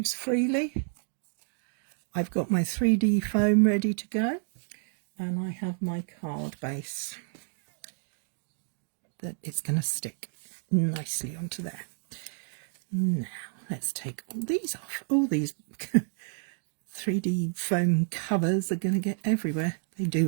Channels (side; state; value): left; silent; 58 dB below the other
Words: freely. I've got my 3D foam ready to go, and I have my card base that is going to stick nicely onto there. Now let's take all these off. All these 3D foam covers are going to get everywhere. They